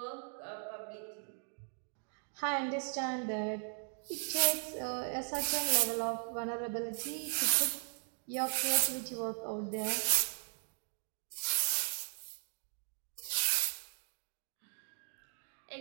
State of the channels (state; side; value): silent; left; 53 dB below the other